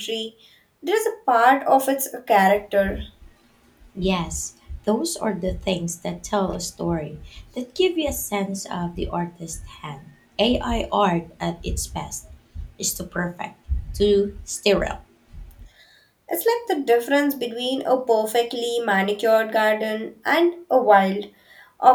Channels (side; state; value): both; identical; correlation 1.00